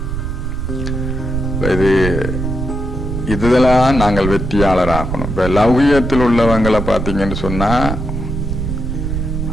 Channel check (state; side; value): noise; right; rumble, 3 dB below the sound